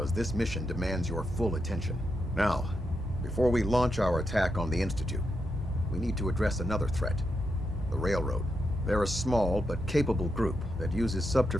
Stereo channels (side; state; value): both; normal; correlation 0.84